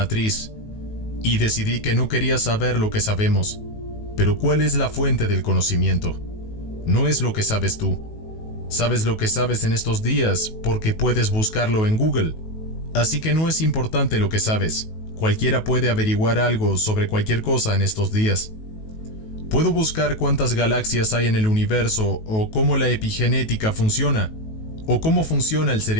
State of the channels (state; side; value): late; right; 19 ms